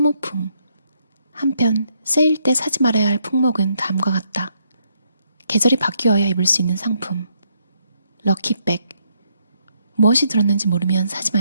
한편 세일 때 사지 말아야 할 품목은 다음과 같다. 계절이 바뀌어야 입을 수 있는 상품, 럭키백. 무엇이 들었는지 모르면 사지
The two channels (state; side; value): inverted; both; correlation -0.74